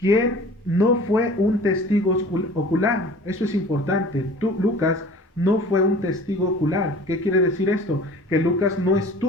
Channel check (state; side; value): normal; both; correlation 0.45